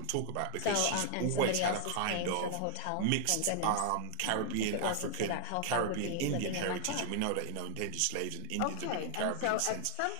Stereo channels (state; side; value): different; both; correlation 0.00